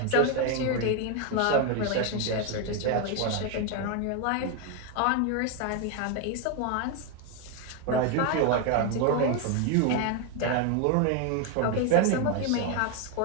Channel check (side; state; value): both; different; correlation 0.01